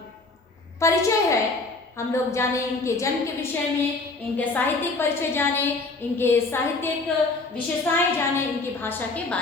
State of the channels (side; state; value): right; quieter; 3.5 dB